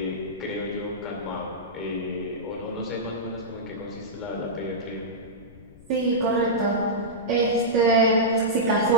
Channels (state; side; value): noise; left; rumble, 22 dB below the sound